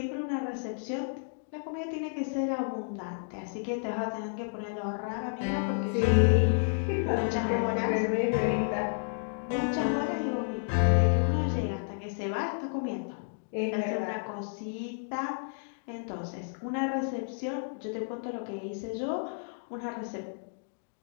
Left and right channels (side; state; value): right; silent; digital silence